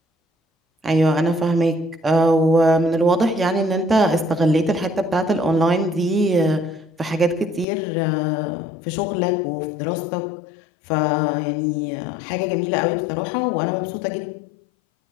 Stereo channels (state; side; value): drops out; right; at 7.7 s